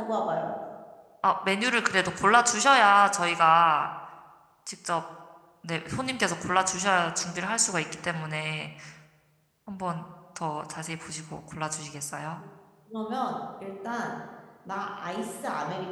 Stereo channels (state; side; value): identical; both; correlation 1.00